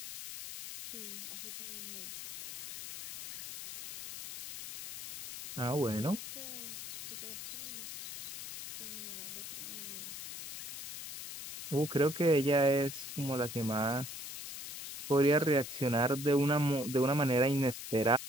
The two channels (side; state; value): left; noise; hiss, 7 dB below the sound